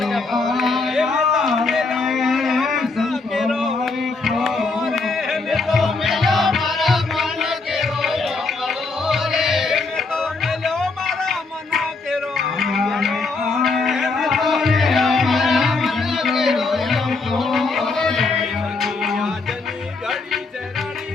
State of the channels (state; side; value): quieter; right; 3.9 dB